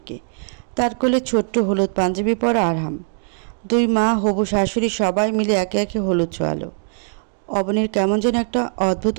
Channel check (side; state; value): left; silent; digital silence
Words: তার কোলে ছোট্ট হলুদ পাঞ্জাবি পরা আরহাম। দুই মা, হবু শাশুড়ি সবাই মিলে একে একে হলুদ ছোঁয়ালো। অবনীর কেমন যেন একটা অদ্ভুত